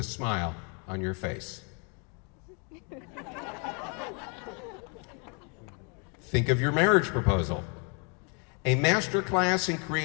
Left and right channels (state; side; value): quieter; right; 36.4 dB